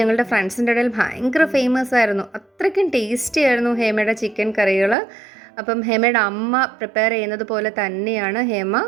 ഫ്രണ്ട്സിൻ്റെ ഇടയിൽ ഭയങ്കര ഫേമസ് ആയിരുന്നു. അത്രയ്ക്കും ടേസ്റ്റി ആയിരുന്നു ഹേമയുടെ ചിക്കൻ കറികൾ. അപ്പം ഹേമയുടെ അമ്മ പ്രിപ്പയർ ചെയ്യുന്നത് പോലെ തന്നെയാണ് ഹേമ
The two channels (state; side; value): drops out; left; at 5.0 s